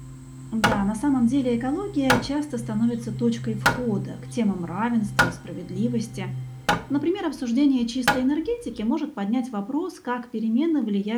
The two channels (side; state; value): both; identical; correlation 1.00